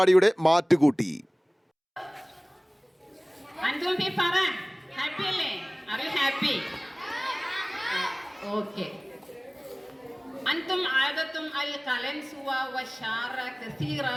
മാറ്റുകൂട്ടി. أنتم عادتم القلنسوة والشعر كثيرة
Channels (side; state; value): both; identical; correlation 1.00